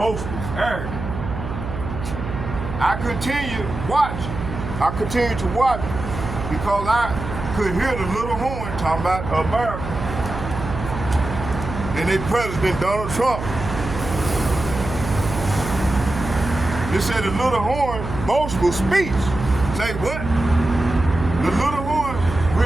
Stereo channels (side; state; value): right; noise; hum, 7 dB below the sound